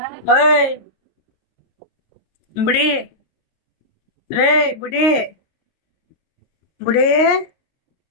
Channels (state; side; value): late; right; 22 ms